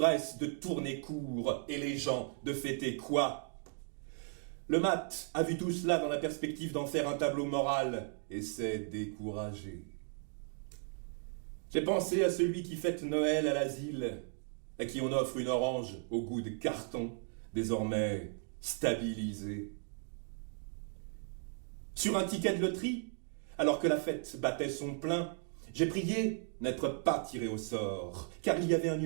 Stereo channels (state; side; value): silent; left; 54 dB below the other